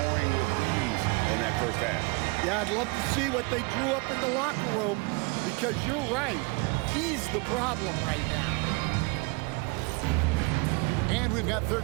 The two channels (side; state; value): left; quieter; 28.7 dB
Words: with ease in that first half. Yeah, I'd love to see what they drew up in the locker room, because you're right. He's the problem right now. And we've got third